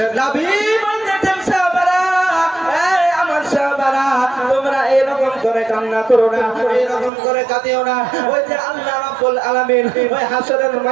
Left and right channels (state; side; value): drops out; left; at 7.1 s